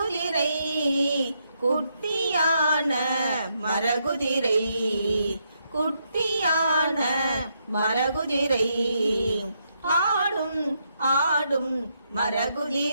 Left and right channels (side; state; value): both; inverted; correlation -0.78